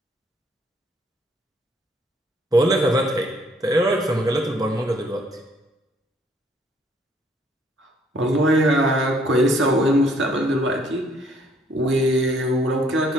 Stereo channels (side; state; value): both; normal; correlation 0.64